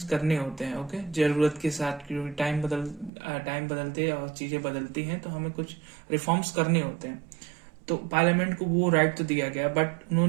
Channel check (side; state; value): left; drops out; at 3.1 s